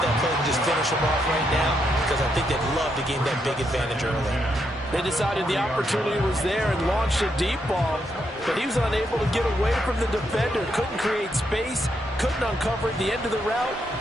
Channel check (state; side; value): normal; both; correlation 0.79